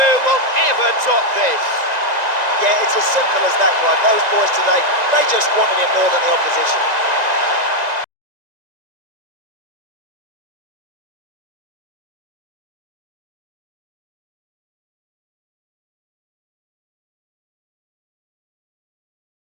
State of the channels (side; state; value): left; late; 1.9 ms